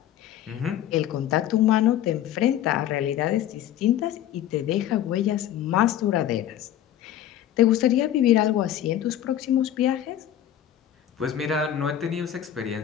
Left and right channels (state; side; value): quieter; right; 11.4 dB